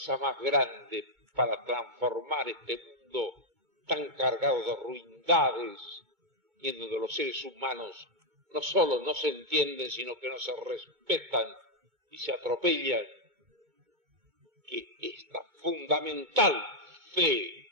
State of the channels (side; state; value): left; late; 2.2 ms